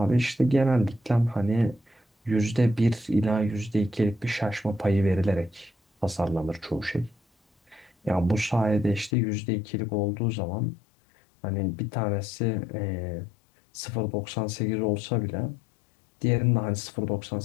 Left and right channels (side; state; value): right; drops out; at 9.1 s